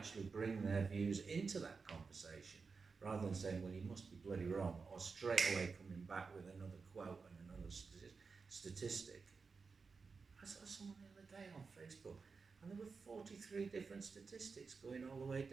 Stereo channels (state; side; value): quieter; left; 4.8 dB